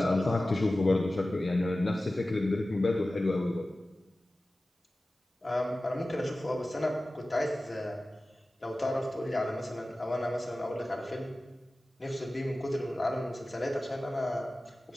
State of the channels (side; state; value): both; normal; correlation 0.96